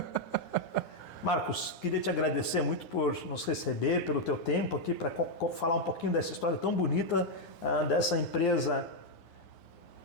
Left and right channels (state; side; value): late; right; 9.7 ms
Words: Marcos, queria te agradecer muito por nos receber, pelo teu tempo aqui para falar um pouquinho dessa história tão bonita dessa empresa